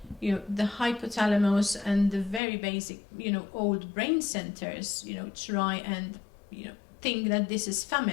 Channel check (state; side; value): drops out; right; at 2.4 s